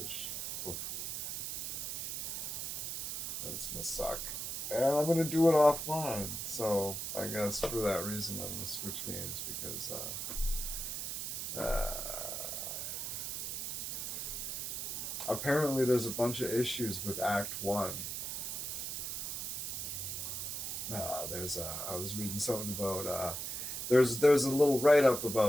That's gonna suck. And I'm gonna do it offline. So I guess for that reason I'm gonna switch games because apparently there's a bunch of issues with Act 1. I was reading something about there's a little write-up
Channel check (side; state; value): right; noise; hiss, 3 dB below the sound